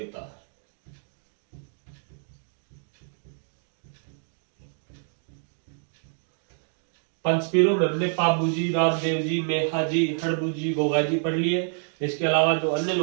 पंचपीरों में हमने पाबू जी, रामदेव जी, मेहा जी, हड़बू जी, गोगा जी पढ़ लिए। इसके अलावा जो अन्य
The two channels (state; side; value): silent; left; 60 dB below the other